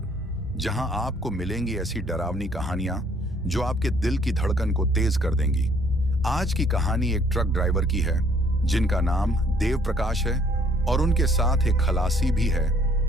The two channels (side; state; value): both; normal; correlation 0.62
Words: जहां आपको मिलेंगी ऐसी डरावनी कहानियां जो आपके दिल की धड़कन को तेज कर देंगी। आज की कहानी एक ट्रक ड्राइवर की है जिनका नाम देव प्रकाश है और उनके साथ एक खलासी भी है